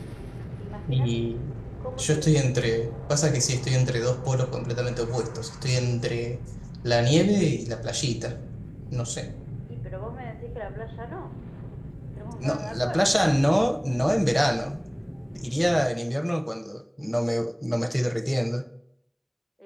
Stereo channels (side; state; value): both; identical; correlation 1.00